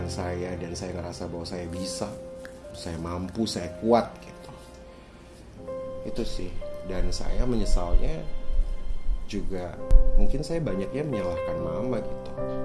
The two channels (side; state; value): both; identical; correlation 1.00